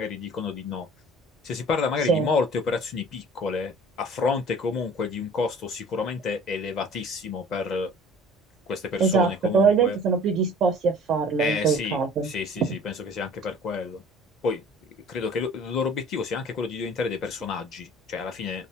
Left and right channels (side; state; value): both; normal; correlation 0.48